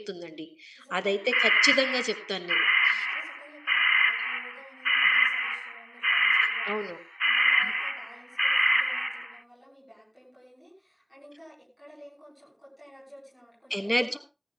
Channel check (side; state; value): both; identical; correlation 1.00